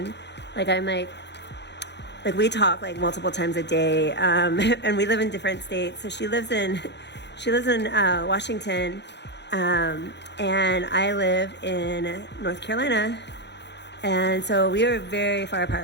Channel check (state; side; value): late; right; 0.50 ms